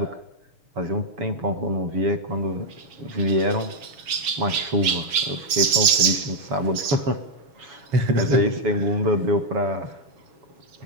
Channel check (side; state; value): left; late; 7.2 ms